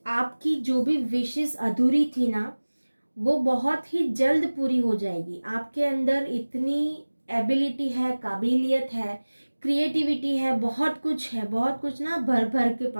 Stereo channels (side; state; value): both; inverted; correlation -1.00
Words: आपकी जो भी विशेस अधूरी थी ना वो बहुत ही जल्द पूरी हो जाएगी। आपके अंदर इतनी एबिलिटी है, काबिलियत है, क्रिएटिविटी है, बहुत कुछ है, बहुत कुछ ना भर भर के